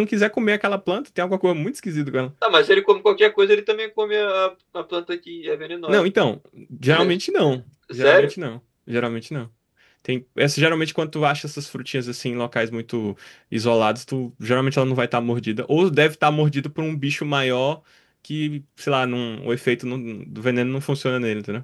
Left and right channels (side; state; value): both; identical; correlation 1.00